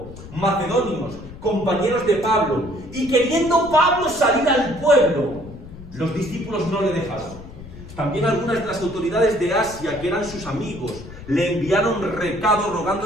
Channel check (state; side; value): noise; left; rumble, 15 dB below the sound